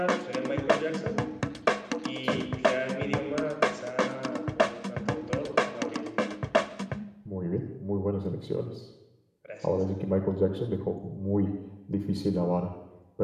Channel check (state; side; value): identical; both; correlation 1.00